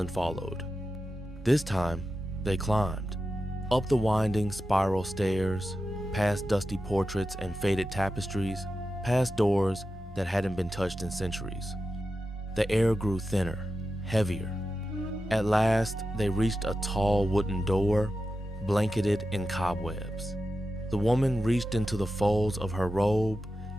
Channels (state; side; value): normal; both; correlation 0.91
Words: followed. This time, they climbed, up the winding spiral stairs, past dusty portraits and faded tapestries, past doors that hadn't been touched in centuries. The air grew thinner, heavier. At last, they reached a tall wooden door, blanketed in cobwebs. The woman reached into the folds of her robe